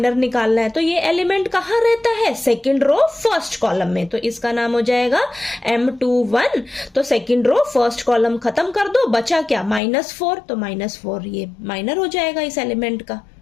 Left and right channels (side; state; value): right; drops out; at 9.8 s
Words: निकालना है। तो ये एलिमेंट कहां रहता है? सेकंड रो फर्स्ट कॉलम में, तो इसका नाम हो जाएगा M21। तो सेकंड रो फर्स्ट कॉलम खत्म कर दो, बचा क्या? -4, तो -4 ये माइनर हो जाएगा इस एलिमेंट का।